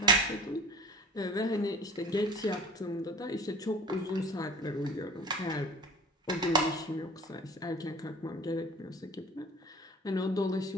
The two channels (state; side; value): normal; both; correlation 0.40